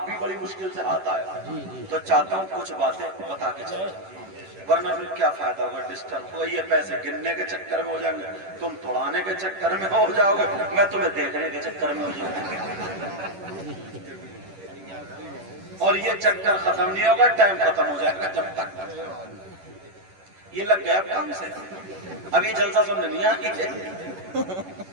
بھی بڑی مشکل سے ہاتھ آیا تو چاہتا ہوں کچھ باتیں بتا کے چلیں، ورنہ پھر کیا فائدہ ہوگا؟ ڈسٹرب ہوگا. یہ پیسے گننے کے چکر میں ہو جائیں گے، تم توڑانے کے چکر میں ہو جاؤ گے، میں تمہیں دیکھنے کے چکر میں ہو جاؤں گا. اور یہ چکر ختم نہیں ہوگا، ٹائم ختم ہو جائے گا. جب تک یہ لگ گیا کام سے، اب یہ جلسہ سننے نہیں آئی.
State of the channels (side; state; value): left; late; 11 ms